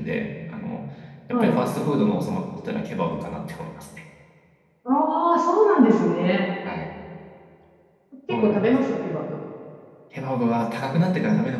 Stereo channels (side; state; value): both; identical; correlation 1.00